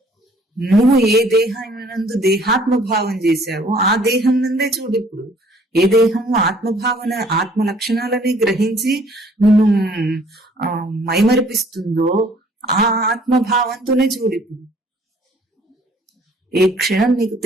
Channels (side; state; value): both; normal; correlation 0.58